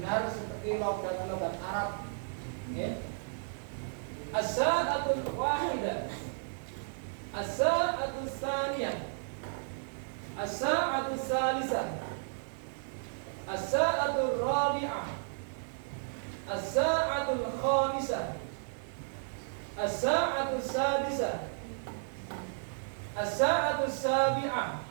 seperti logat-logat Arab. Ya. As-sa'atul wahidah, as-sa'atul tsaniyah, as-sa'atul tsalisah, as-sa'atul rabi'ah, as-sa'atul khamisah, as-sa'atul sadisah, as-sa'atul sabi'ah,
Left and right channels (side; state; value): left; silent; 55 dB below the other